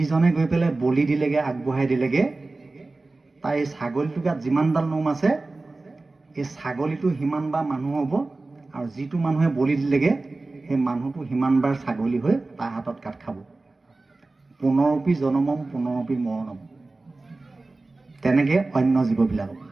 গৈ পেলাই বলি দিলেগে, আগবঢ়াই দিলেগে, তাৰ এই ছাগলীটোৰ গাত যিমানডাল নোম আছে, এই ছাগলীটো সিমানবাৰ মানুহ হ'ব, আৰু যিটো মানুহে বলি দিলেগে সেই মানুহটো সিমানবাৰ ছাগলী হৈ তাৰ হাতত কাট খাব। পুনৰপি জনমম পুনৰপি মৰণম। তেনেকৈ অন্য জীৱবিলাকক।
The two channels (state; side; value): quieter; left; 3.3 dB